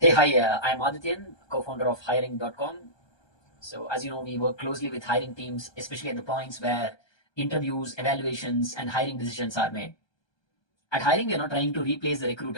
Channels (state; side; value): late; right; 1.2 ms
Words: hi, I'm Adityan, co-founder of hiring.com. So as you know, we work closely with hiring teams, especially at the points where interviews, evaluations, and hiring decisions are made. At hiring, we are not trying to replace the